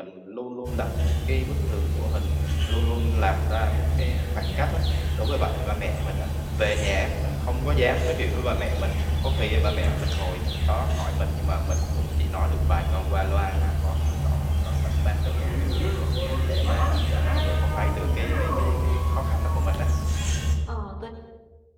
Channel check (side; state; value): both; identical; correlation 1.00